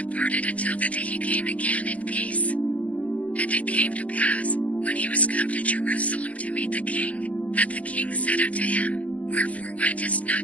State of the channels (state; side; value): late; right; 0.071 ms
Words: until the day he came again in peace. And it came to pass, when he was come to Jerusalem to meet the king, that the king said unto him, Wherefore wentest